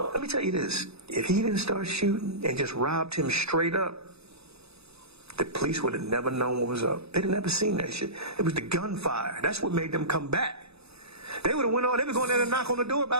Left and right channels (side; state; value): left; late; 0.79 ms